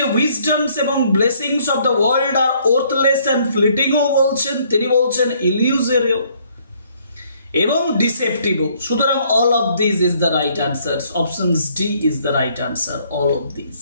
উইজডমস এবং blessings of the world are worthless and ফ্লিটিংও বলছেন, তিনি বলছেন ইলিউজরিও এবং ডিসেপটিভও। সুতরাং all of this is the right answer. Option D is the right answer, all of this.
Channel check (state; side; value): inverted; both; correlation -0.65